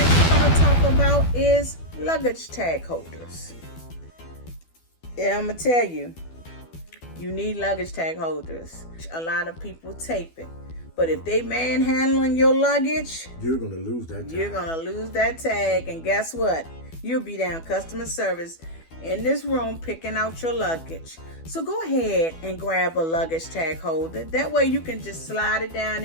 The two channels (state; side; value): late; right; 12 ms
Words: we're going to talk about is luggage tag holders. Yeah, I'm going to tell you, you need luggage tag holders. A lot of people tape it. But if they manhandling your luggage, you're going to lose that tag. You're going to lose that tag. And guess what? You'll be down customer service in this room picking out your luggage. So go ahead and grab a luggage tag holder. That way you can just slide it down